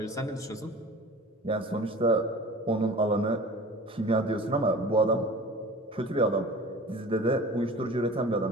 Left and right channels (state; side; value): normal; both; correlation 0.40